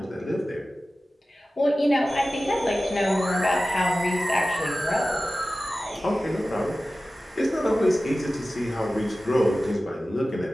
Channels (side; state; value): both; normal; correlation 0.95